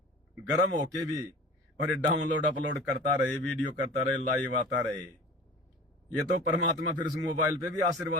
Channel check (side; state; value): both; normal; correlation 0.39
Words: गर्म होके भी और ये डाउनलोड अपलोड करता रहे, वीडियो करता रहे, लाइव आता रहे। ये तो परमात्मा फिर उस मोबाइल पे भी